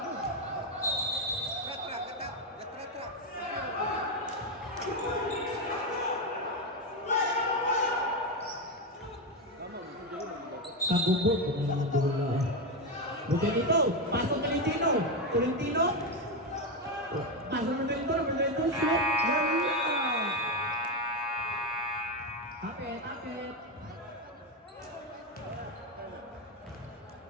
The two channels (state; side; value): normal; both; correlation 0.10